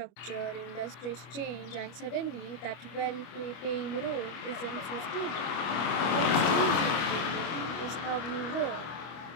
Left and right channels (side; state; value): right; late; 25 ms